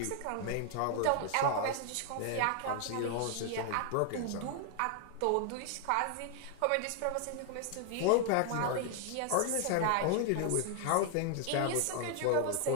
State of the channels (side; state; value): both; different; correlation 0.00